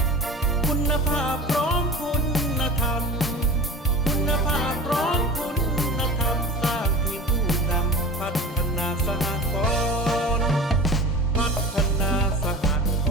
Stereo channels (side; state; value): both; normal; correlation 0.35